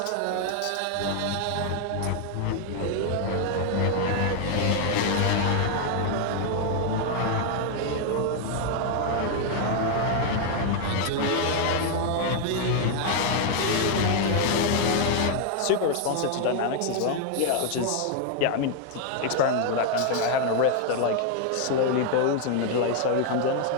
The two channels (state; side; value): different; both; correlation 0.00